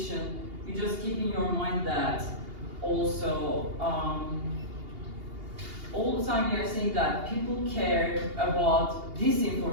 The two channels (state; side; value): late; left; 2.8 ms